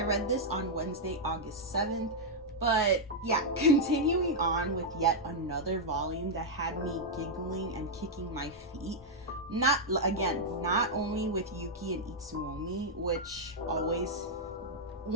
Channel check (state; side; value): normal; both; correlation -0.04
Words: read this on Wednesday, August 7th, but yeah, continuing on with yet another volume that had me giggling and kicking my feet. Not only with Yuki and Itsuomi, which always,